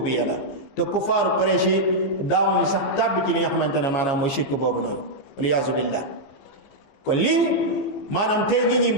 la, te kufaaru Quraysh yi daawuñu sax tàbbi ci li nga xamante ne maanaam mooy shirk boobu noonu, waliyaazu billah. kon lii maanaam tey nit ñi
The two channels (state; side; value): late; right; 15 ms